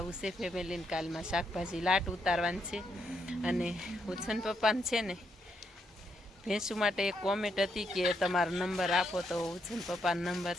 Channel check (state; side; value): normal; both; correlation 0.78